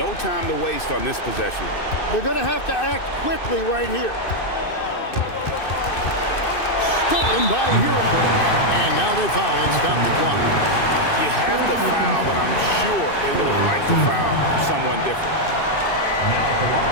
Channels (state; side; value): late; right; 2.6 ms